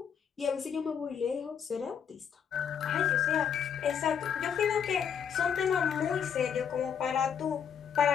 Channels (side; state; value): right; quieter; 7.7 dB